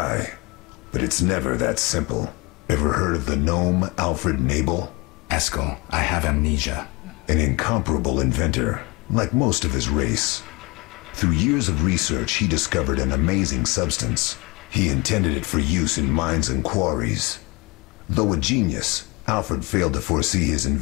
but it's never that simple. Ever heard of the gnome Alfred Nabel? Eskel, I have amnesia. An incomparable inventor, like most of his race. Through years of research, he discovered an amazing substance. He intended it for use in mines and quarries. Though a genius, Alfred failed to foresee his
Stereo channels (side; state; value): right; quieter; 26.4 dB